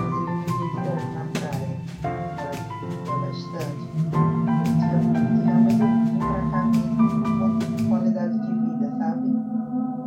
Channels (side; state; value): both; identical; correlation 1.00